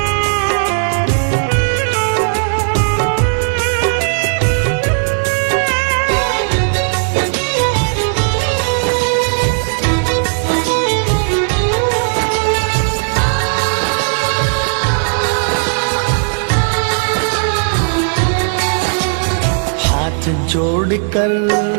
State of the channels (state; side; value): silent; left; digital silence